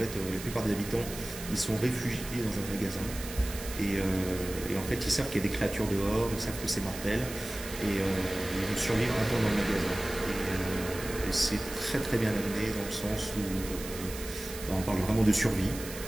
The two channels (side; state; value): right; noise; hiss, 11 dB below the sound